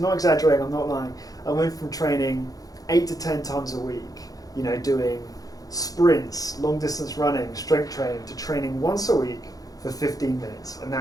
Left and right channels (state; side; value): late; right; 0.18 ms